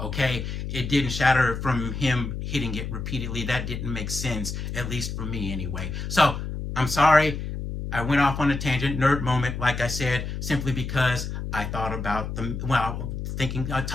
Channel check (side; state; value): left; noise; hum, 5 dB below the sound